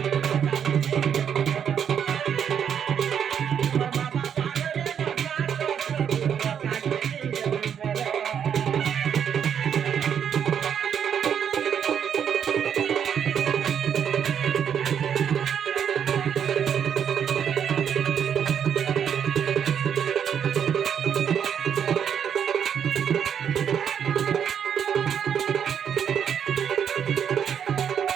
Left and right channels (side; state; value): left; quieter; 8.2 dB